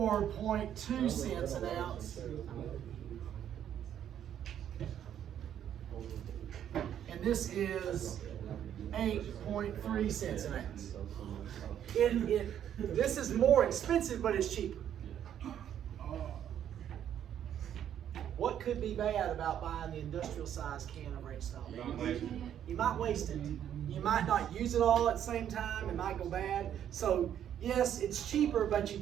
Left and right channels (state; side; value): quieter; left; 10.0 dB